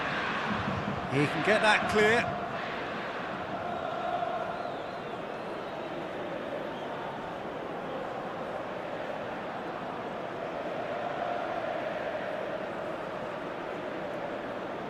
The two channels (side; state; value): both; identical; correlation 1.00